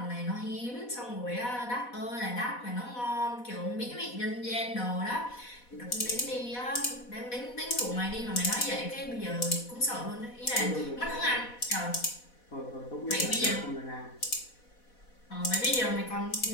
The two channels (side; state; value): right; late; 4.1 ms